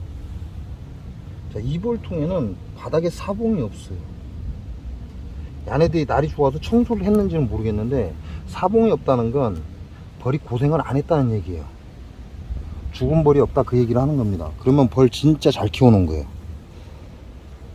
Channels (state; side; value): identical; both; correlation 1.00